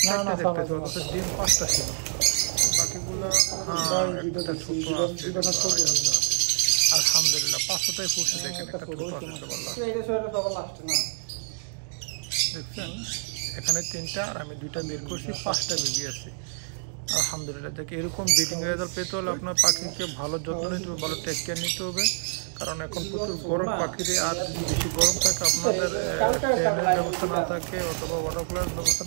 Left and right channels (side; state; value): left; silent; digital silence